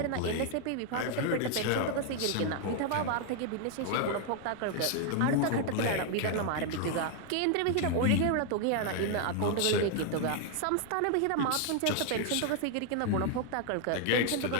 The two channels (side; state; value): both; different; correlation 0.00